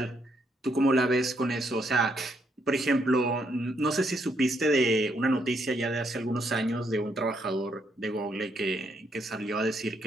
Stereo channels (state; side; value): normal; both; correlation 0.75